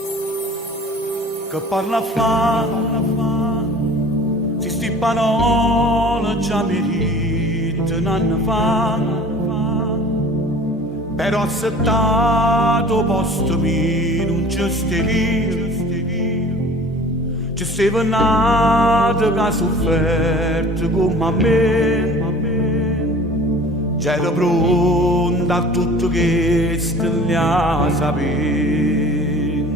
parla fa, si sti parole già merita un anno fa, però accettato posto mio non ci stevi, ci stava nato che ha sofferto come a me, c'era pronta a tutto questo gli ha saputo.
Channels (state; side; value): normal; both; correlation 0.44